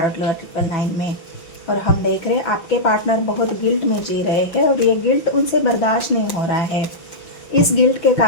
लवर 999 में। और हम देख रहे हैं आपके पार्टनर बहुत गिल्ट में जी रहे हैं और ये गिल्ट उनसे बर्दाश्त नहीं हो रहा है। इस गिल्ट के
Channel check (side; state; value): right; late; 6.0 ms